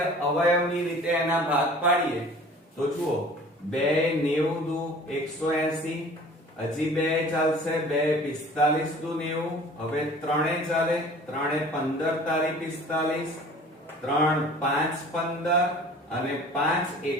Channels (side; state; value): both; normal; correlation 0.46